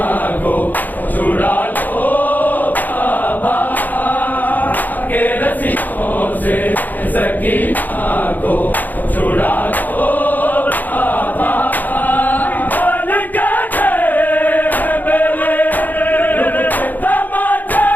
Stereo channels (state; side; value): late; right; 0.084 ms